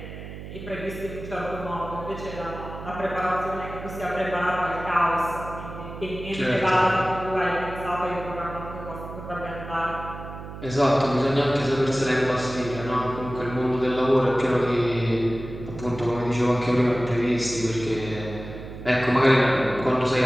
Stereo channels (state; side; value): noise; right; hum, 11 dB below the sound